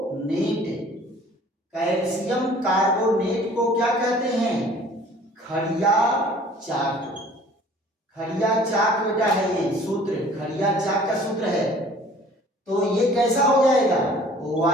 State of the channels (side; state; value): both; normal; correlation 0.51